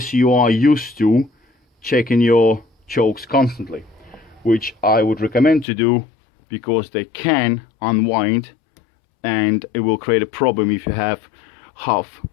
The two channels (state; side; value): drops out; right; at 5.7 s